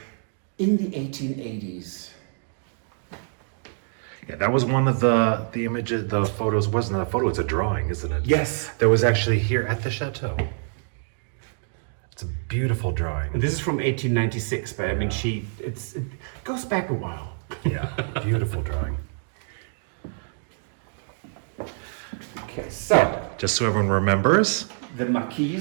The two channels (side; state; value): left; silent; digital silence